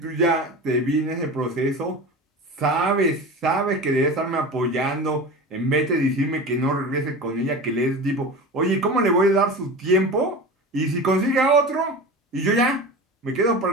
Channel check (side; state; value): both; normal; correlation 0.30